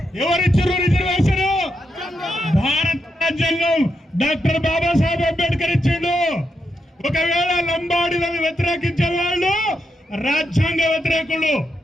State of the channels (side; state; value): both; normal; correlation 0.83